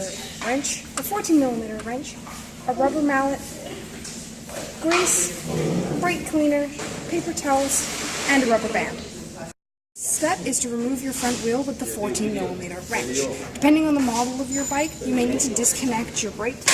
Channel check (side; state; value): both; identical; correlation 1.00